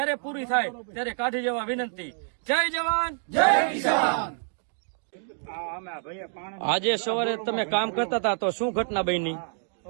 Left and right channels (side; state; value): left; silent; 60 dB below the other